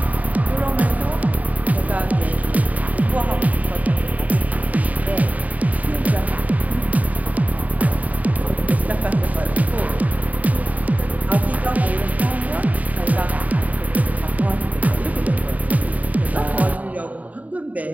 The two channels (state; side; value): late; left; 0.073 ms